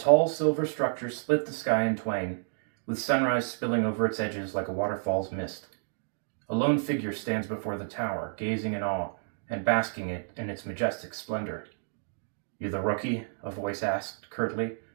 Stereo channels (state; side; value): silent; left; digital silence